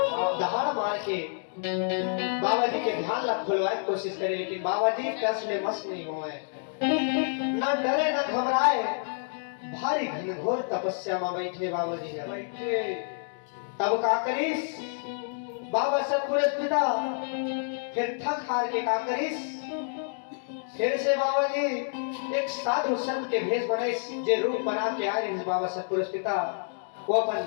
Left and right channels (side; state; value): right; silent; digital silence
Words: दहाड़ मार के बाबा जी के ध्यान ला खुलवाए की कोशिश करे, लेकिन बाबा जी टस में मस नहीं हुए, न डरे न घबराए, भारी घनघोर तपस्या में बैठे बाबा जी बैठे। तब का करीस बाबा सतपुरुष पिता फिर थक हार के का करीस फिर से बाबा जी एक साधु संत के भेष बनाइस, जे रूप बना के आए बाबा सतपुरुष पिता वो अपन